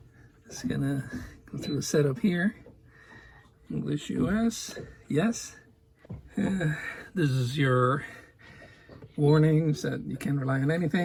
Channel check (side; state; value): both; identical; correlation 1.00